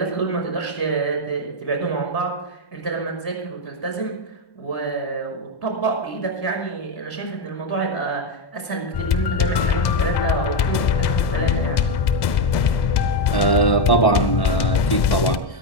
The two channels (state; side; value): late; right; 1.1 ms